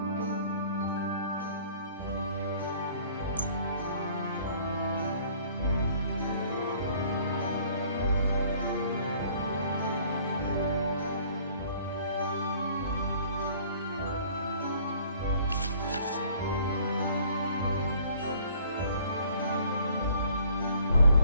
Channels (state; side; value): inverted; both; correlation -0.56